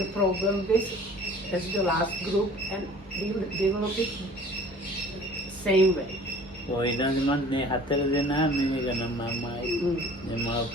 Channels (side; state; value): both; normal; correlation 0.48